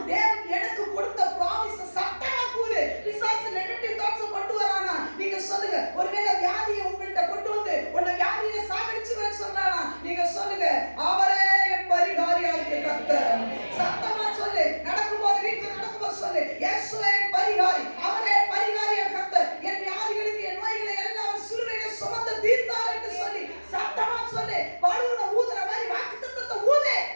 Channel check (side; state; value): both; inverted; correlation -1.00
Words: தேவன் எனக்கு கொடுத்த ப்ராமிஸை சத்தமா கூறு. பிசாசு நெகட்டிவ் தாட்ஸ் கொண்டு வரானா? நீங்க சொல்லுங்க. ஒருவேளை வியாதியை உங்கள்கிட்ட கொண்டு வந்து உன்னை வியாதியை சாகடிச்சுவேன்னு சொல்றானா? நீங்க சொல்லுங்க, அவரே என் பரிகாரியாகிய கர்த்தர். சத்தமா சொல்லு. நடக்கும்போது வீட்டுல நடக்கும்போது சொல்லு, இயேசுவே என் பரிகாரி, அவரே பரிகாரியாகிய கர்த்தர். என் வியாதிகளுக்கு என் நோய்களை எல்லாம் சிலுவையிலே சுமந்து தீர்த்தார் என்று சொல்லி சத்தமா சொல்லு. பலூனை ஊதுற மாதிரி வாக்குத்தத்தத்தை ஊது.